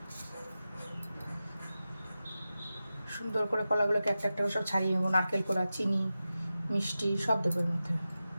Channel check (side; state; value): both; inverted; correlation -0.93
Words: সুন্দর করে কলাগুলোকে একটা একটা করে সব ছাড়িয়ে নেবো। নারকেল কোড়া, চিনি, মিষ্টি সব দেবো এর মধ্যে।